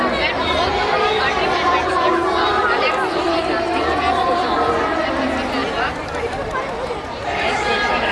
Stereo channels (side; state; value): both; identical; correlation 1.00